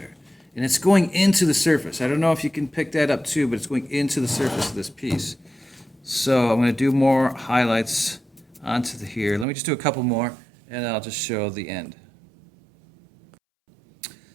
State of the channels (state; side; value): drops out; left; at 9.5 s